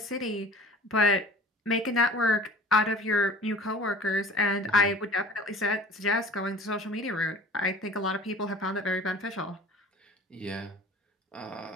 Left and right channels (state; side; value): normal; both; correlation 0.44